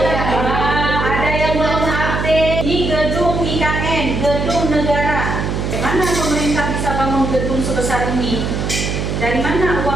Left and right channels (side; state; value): right; noise; hum, 2 dB below the sound